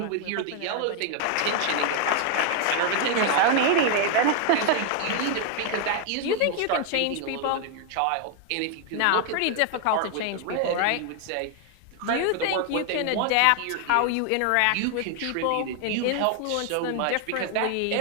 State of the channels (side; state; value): both; different; correlation 0.01